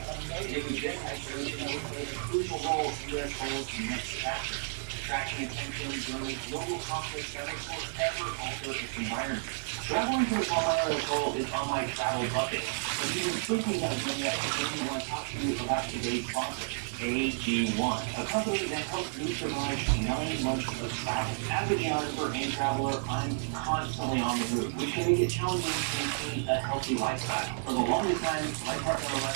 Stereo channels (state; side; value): silent; left; digital silence